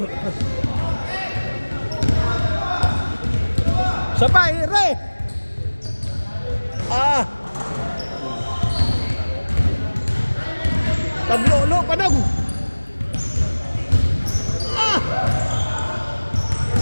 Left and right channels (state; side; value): inverted; both; correlation -1.00